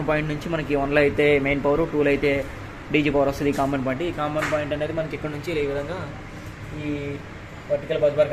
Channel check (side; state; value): both; identical; correlation 1.00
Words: పాయింట్ నుంచి మనకి 1లో అయితే మెయిన్ పవర్, 2లో అయితే డీజీ పవర్ వస్తుంది. ఈ కామన్ పాయింట్, ఈ కామన్ పాయింట్ అనేది మనకి ఇక్కడ నుంచి ఈ విధంగా ఈ వర్టికల్ బస్